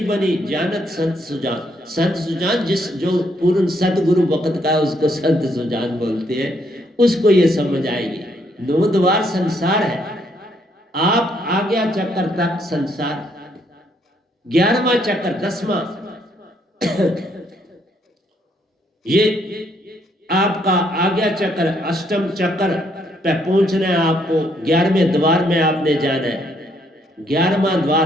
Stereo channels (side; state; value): both; normal; correlation 0.71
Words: बनी, जानत संत सुजान। संत सुजान, जिस जो पूर्ण सतगुरु वक्त का उसको संत सुजान बोलते हैं, उसको ये समझ आएगी। 9 द्वार संसार है, आप आज्ञा चक्कर तक संसार, 11वां चक्कर, 10वां ये आपका आज्ञा चक्र, अष्टम चक्र पे पहुंचना है आपको, 11वें द्वार में आपने जाना है। 11वां